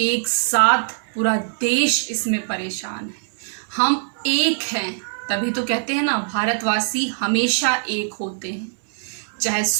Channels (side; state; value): left; silent; 64 dB below the other